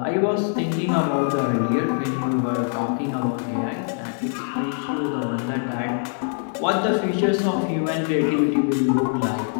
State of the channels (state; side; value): silent; right; 62 dB below the other